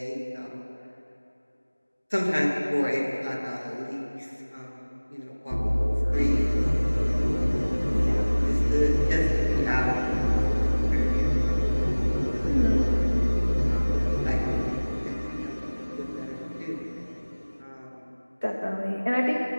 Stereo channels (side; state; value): both; inverted; correlation -1.00